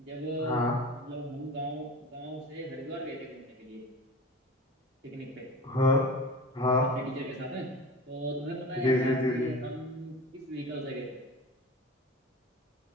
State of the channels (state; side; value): normal; both; correlation 0.35